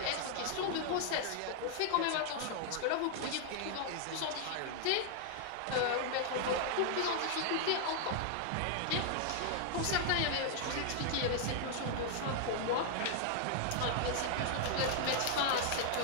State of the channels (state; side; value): different; both; correlation 0.00